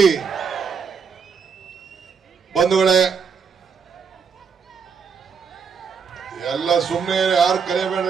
बंधुगळे ಎಲ್ಲ ಸುಮ್ಮನೆ ಯಾರು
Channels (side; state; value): left; quieter; 6.1 dB